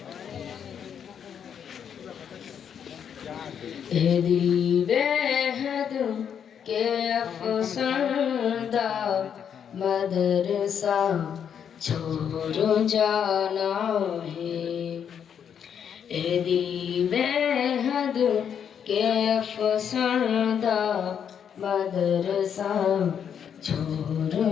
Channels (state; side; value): quieter; right; 8.1 dB